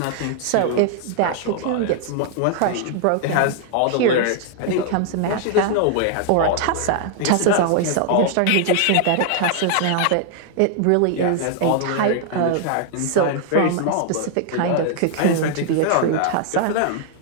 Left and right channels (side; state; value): both; different; correlation 0.00